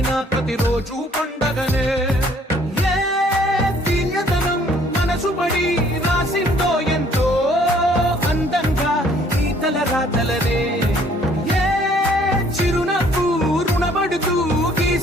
ప్రతిరోజు పండగనే ఏ దివ్యతనం మనసు పడి రాసిందో ఎంతో అందంగా ఈ తల రాతలనే ఏ చిరునవ్వు రుణపడుతూ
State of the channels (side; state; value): both; normal; correlation 0.60